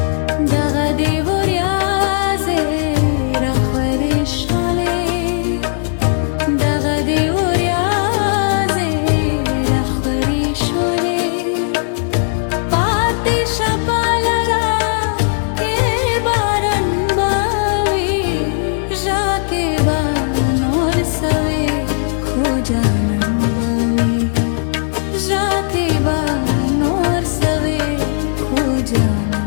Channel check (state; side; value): silent; right; 65 dB below the other